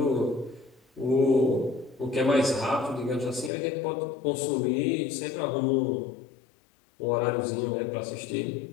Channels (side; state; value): right; drops out; at 3.5 s